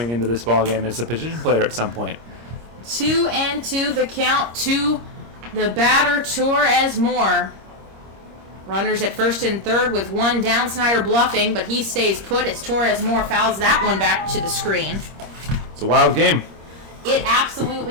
into this ballgame as a position player at some point. 2-2 the count to the batter, Torres Moore. Runners at first and third with 1 down. Snyder bluffing, but he stays put as Torres Moore fouls that one back to the screen. It's a wild game. It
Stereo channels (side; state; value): left; late; 26 ms